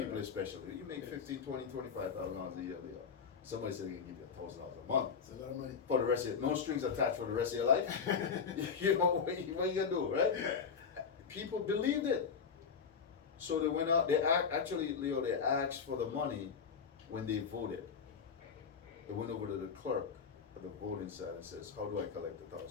people especially. You make $15,000, $20,000, $25,000 a year. Somebody said they can give you $1,000 a month. It's a lot of money. For the rest of no strings attached for the rest of your life. You know what you gonna do, right? People believed it. So they went out, actually, Leo, they asked for the money when they voted. They went over to the clerk at the voting side and says, how do I collect the $1,000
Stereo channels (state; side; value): quieter; right; 6.2 dB